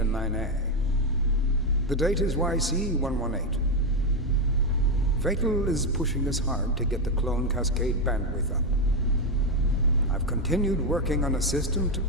9A. The date is YC 118. Fatal is pushing us hard to get the clone cascade bandwidth up. I've continued working on a system to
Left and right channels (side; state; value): both; normal; correlation 0.07